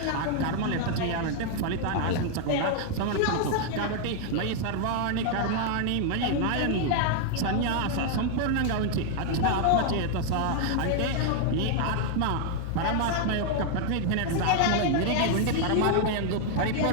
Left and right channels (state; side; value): different; both; correlation 0.00